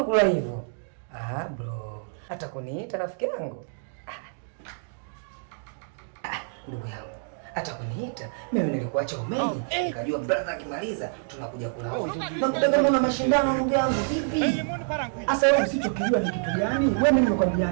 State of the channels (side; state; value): left; silent; digital silence